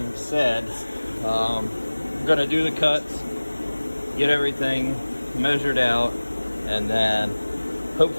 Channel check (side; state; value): both; inverted; correlation -1.00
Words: said, I'm gonna do the cuts, get everything measured out, and then